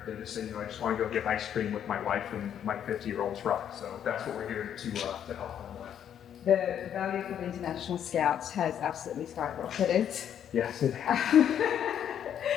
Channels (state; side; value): quieter; right; 9.4 dB